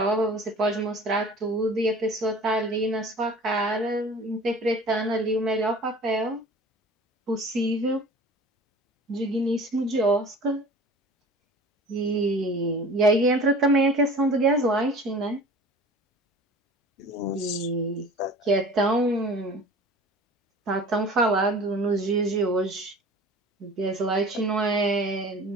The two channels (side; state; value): both; normal; correlation 0.43